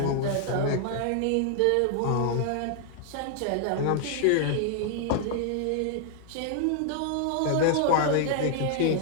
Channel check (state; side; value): different; both; correlation 0.00